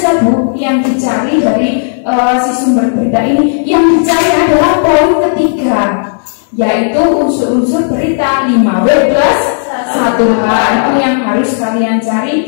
Bu, yang dicari dari si sumber berita ini? Yang dicari adalah poin ketiga, yaitu unsur-unsur berita 5W+1H. Itu yang harus kalian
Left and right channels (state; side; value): silent; right; digital silence